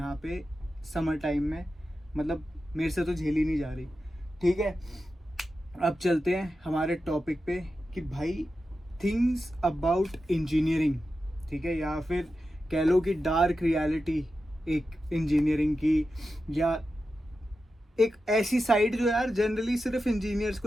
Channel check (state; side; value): normal; both; correlation 0.91